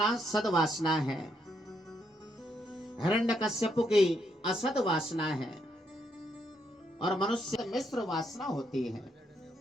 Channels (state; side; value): normal; both; correlation 0.76